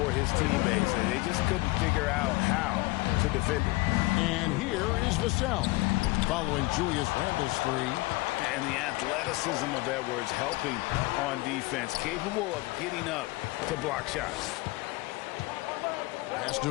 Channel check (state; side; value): quieter; right; 21.9 dB